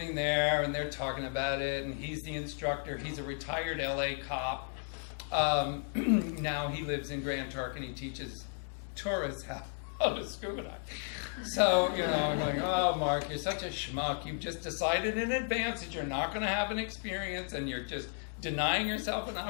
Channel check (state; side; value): silent; right; 55 dB below the other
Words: there and they're talking about it, and he's the instructor. He's a retired LA cop. Now he lives in Grand Turk and he teaches tourists how to scuba dive. So, I'm like, "Oh, Marc, you're such a schmuck. You've just decided in advance that you're not going to have an experience, and you're just denying yourself an